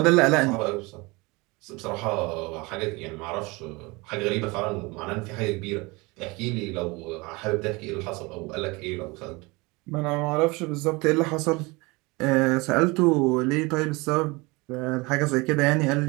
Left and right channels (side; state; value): left; quieter; 24.9 dB